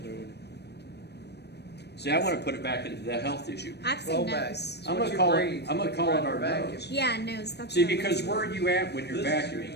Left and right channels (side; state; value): right; late; 0.49 ms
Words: See, I want to put it back into the health issue. I've seen nose. I'm gonna call it our nose. Yeah, nose. That's See, what I because was- where are you at when you're